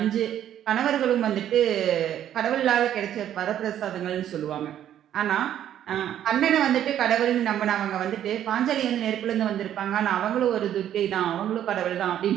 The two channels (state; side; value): quieter; left; 10.8 dB